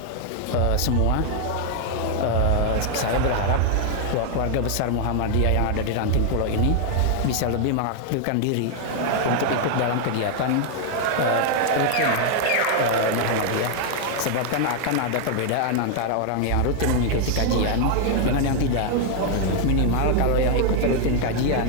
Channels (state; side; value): different; both; correlation 0.00